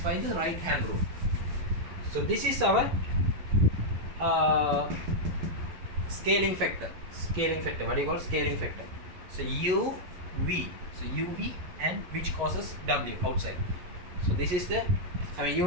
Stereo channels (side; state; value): left; late; 11 ms